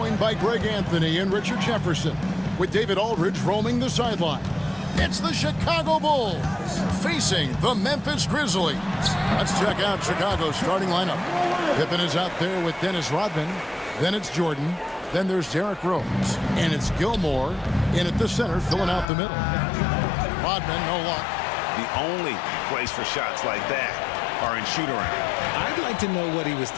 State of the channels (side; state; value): right; drops out; at 19.1 s